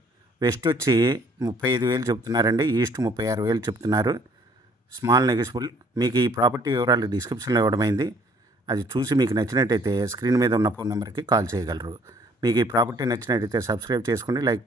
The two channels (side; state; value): both; normal; correlation 0.59